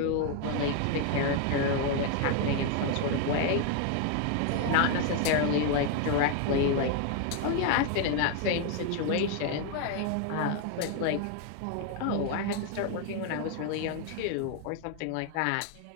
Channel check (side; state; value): both; different; correlation 0.00